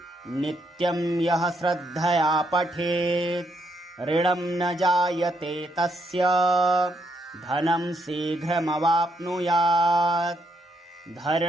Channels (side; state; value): both; normal; correlation 0.76